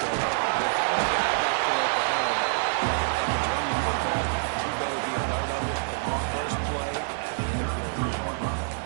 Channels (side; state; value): left; silent; digital silence